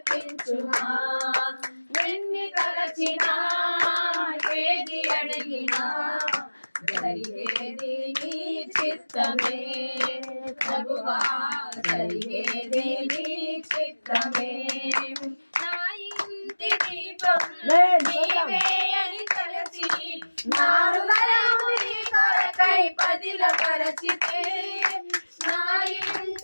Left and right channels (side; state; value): both; inverted; correlation -1.00